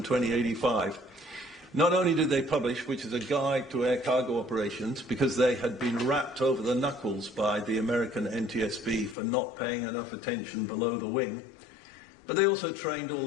Not only did they publish, which is a guide to air cargo operations, because they had been rapped over the knuckles by the American NTSB for not paying enough attention below the wing, but they also trained all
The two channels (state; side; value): drops out; right; at 9.2 s